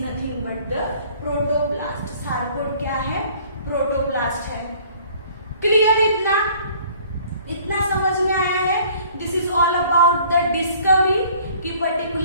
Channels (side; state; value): both; inverted; correlation -0.54